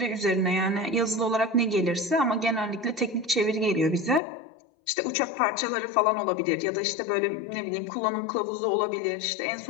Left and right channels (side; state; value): right; drops out; at 4.2 s